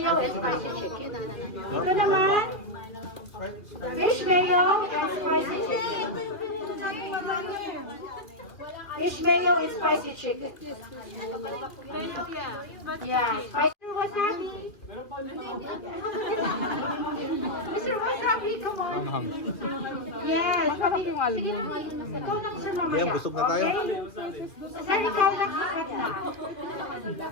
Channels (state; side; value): late; right; 2.6 ms